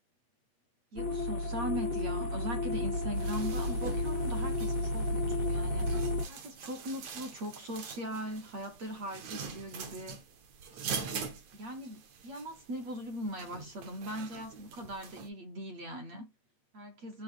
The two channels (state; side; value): late; left; 9.0 ms